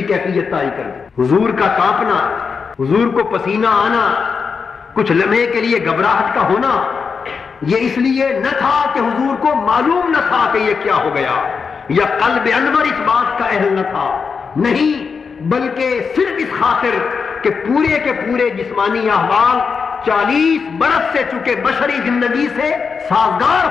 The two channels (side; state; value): right; quieter; 5.5 dB